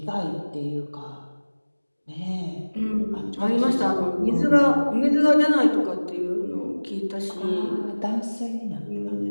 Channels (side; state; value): both; inverted; correlation -1.00